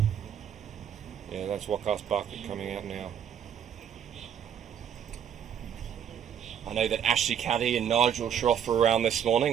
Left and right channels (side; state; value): left; quieter; 8.7 dB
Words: Yeah, that's Wakas Barkat coming out now. I know that Ashley Caddy and Nigel Shroff were around this